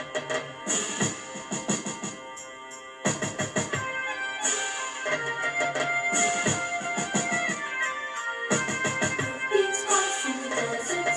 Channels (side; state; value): both; identical; correlation 1.00